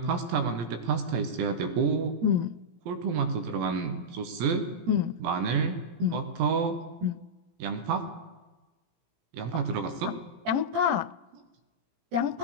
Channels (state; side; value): late; left; 17 ms